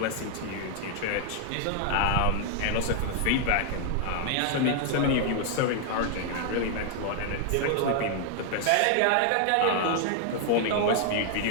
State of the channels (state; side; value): different; both; correlation 0.00